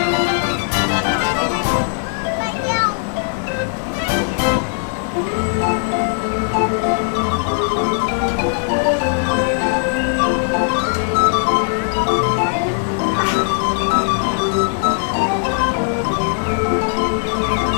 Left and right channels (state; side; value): silent; right; 62 dB below the other